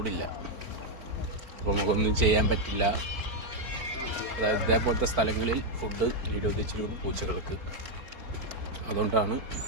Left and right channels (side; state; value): left; late; 4.4 ms